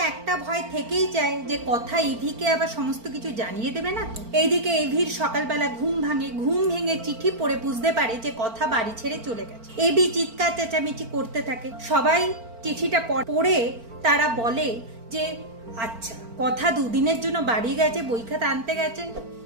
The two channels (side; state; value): left; late; 4.4 ms